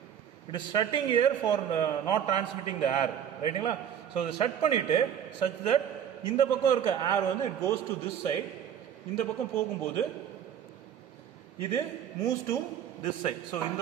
It is shutting air for not transmitting the air, ரைட்டுங்களா? ஸோ இதை ஷட் பண்ணிட்டு சச் தட் இந்த பக்கம் இருக்க ஏர் வந்து it goes to this side. இந்த பக்கம் போகும்போது இது moves to this side. So இந்த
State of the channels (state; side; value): quieter; left; 9.2 dB